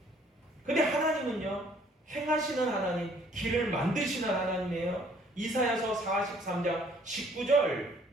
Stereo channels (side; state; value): both; normal; correlation 0.60